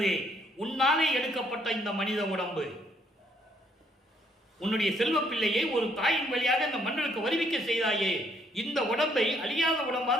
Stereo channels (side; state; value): both; normal; correlation 0.68